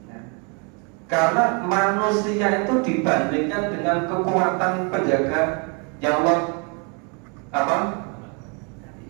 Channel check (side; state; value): left; quieter; 35.0 dB